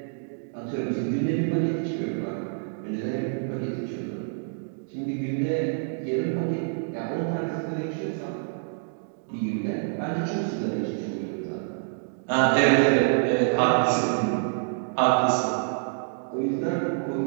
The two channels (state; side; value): silent; left; digital silence